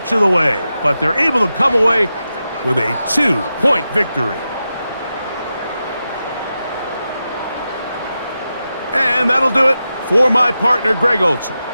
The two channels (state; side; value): inverted; both; correlation -0.90